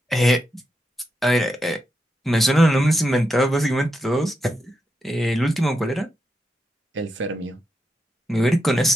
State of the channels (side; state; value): both; normal; correlation 0.85